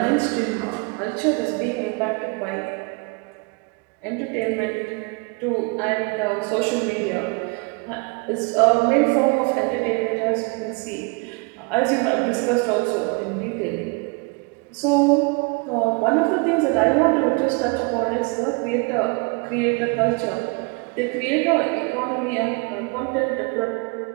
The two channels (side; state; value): left; quieter; 30.3 dB